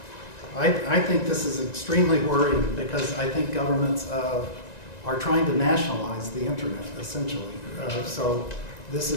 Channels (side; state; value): right; late; 1.9 ms